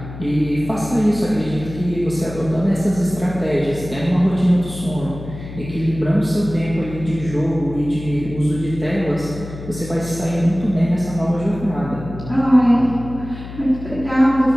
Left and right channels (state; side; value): noise; left; hum, 12 dB below the sound